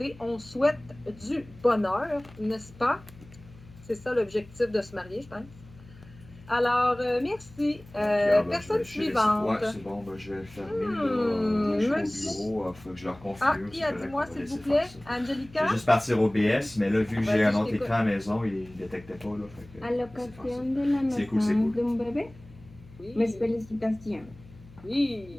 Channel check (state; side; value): noise; left; hum, 21 dB below the sound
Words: on souhaite du bonheur, n'est-ce pas? C'est ça l'objectif de se marier, je pense. Alors, merci. Personne suivante. Ouais, c'est bon, ben, je vais le fermer. Là, je suis au bureau, il faut que je leur configure. Ah, c'est qui a correct, dis-moi, on va s'il vous laisser plaît, faire ça. Je Angelica? vais juste partir au BS, mais là, vu que j'ai Vas-y, un je autre t'écoute. écran à la maison, il ne détectait pas. Là, fait que, À laissez l'occasion faire ça. de la C'est cool, naissance d'un bébé, Oui. mes félicitations.